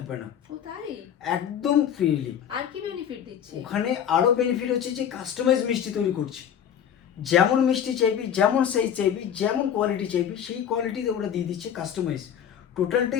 না। ও তাই? একদম ফ্রিলি। আর কি বেনিফিট দিচ্ছে? ওখানে আরও বেনিফিট হচ্ছে যে কাস্টমাইজ মিষ্টি তৈরি করছে। যেমন মিষ্টি চাইবি, যেমন সাইজ চাইবি, যেমন কোয়ালিটি চাইবি, সেই কোয়ালিটিতে ওরা দিয়ে দিচ্ছে কাস্টমাইজ,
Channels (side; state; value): right; quieter; 9.0 dB